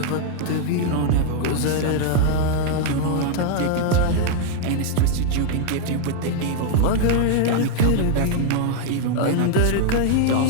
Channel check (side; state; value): both; different; correlation 0.00